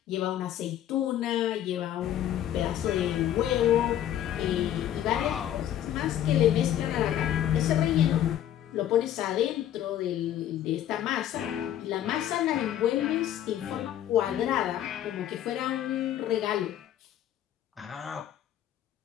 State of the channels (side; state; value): right; quieter; 11.3 dB